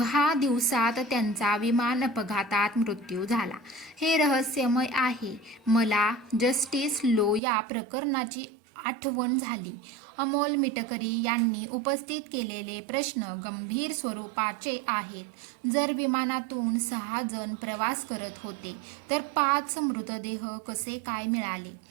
दिवसात त्यांचा विमान अपघातात मृत्यू झाला. हे रहस्यमय आहे. मला जस्टिस लो या प्रकरणाची आठवण झाली. अमोल मिटकरी यांनी उपस्थित केलेले प्रश्न गंभीर स्वरूपाचे आहेत. जर विमानातून 6 जण प्रवास करत होते तर 5 मृतदेह कसे काय मिळाले?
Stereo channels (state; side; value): drops out; left; at 7.4 s